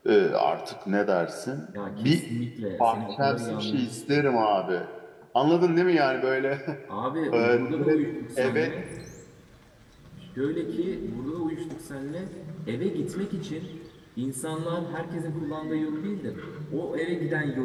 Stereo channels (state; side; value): identical; both; correlation 1.00